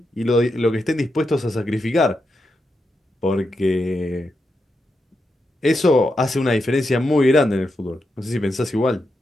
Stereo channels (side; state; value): both; normal; correlation 0.86